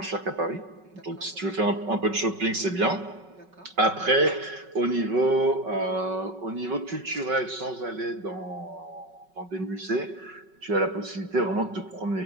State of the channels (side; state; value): left; late; 5.3 ms